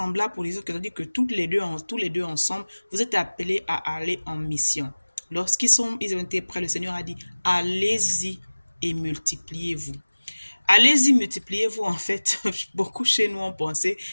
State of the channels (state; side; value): inverted; both; correlation -1.00